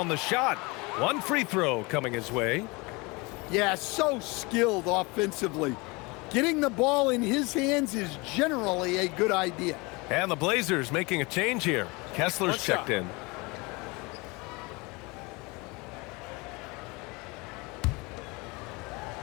the shot. 1 free throw coming his way. Yeah, so skilled offensively. Getting the ball in his hands is generally a good idea. And the Blazers making a change here. Kessler's checked in.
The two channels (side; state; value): right; quieter; 26.1 dB